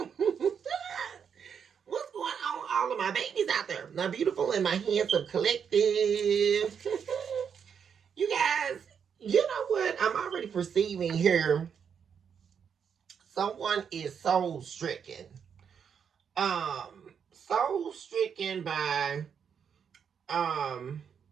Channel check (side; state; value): left; quieter; 7.3 dB